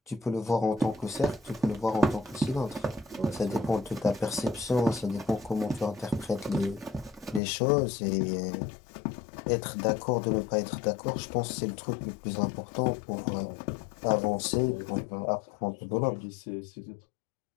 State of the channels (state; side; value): drops out; right; at 7.4 s